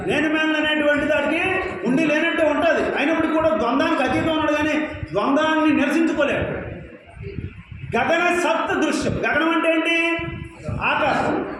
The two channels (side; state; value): both; identical; correlation 1.00